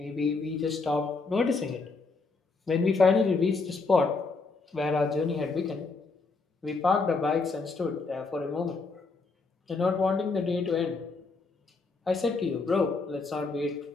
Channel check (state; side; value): quieter; right; 4.1 dB